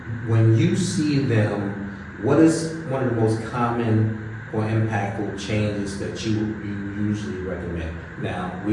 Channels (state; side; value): identical; both; correlation 1.00